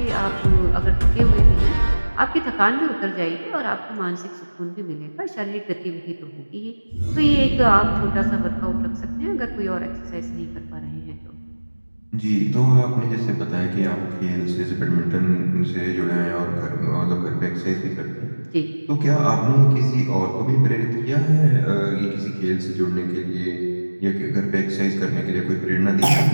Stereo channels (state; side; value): inverted; both; correlation -1.00